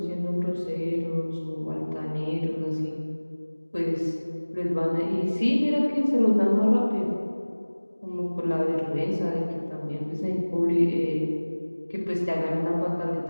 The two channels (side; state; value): both; inverted; correlation -1.00